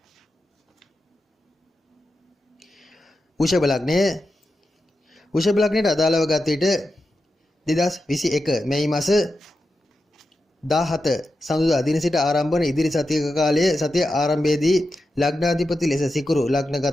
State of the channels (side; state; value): both; normal; correlation 0.90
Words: වෘෂභ ලග්නයට අදාළව ගත විට 2021 මැයි මාස 17 සඳුදා දින සිට ආරම්භ වන ඉදිරි සතියක කාලයේ සතිය ආරම්භයේදී ලග්නාධිපති ලෙස සිකුරු